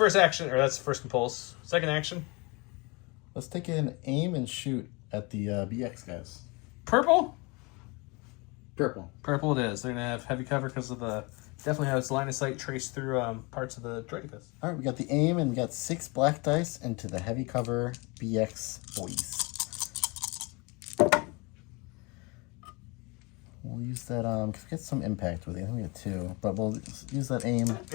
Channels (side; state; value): right; quieter; 27.7 dB